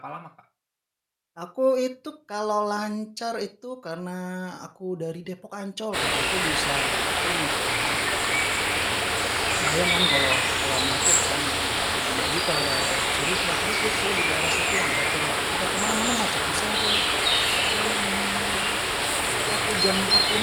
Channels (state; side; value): identical; both; correlation 1.00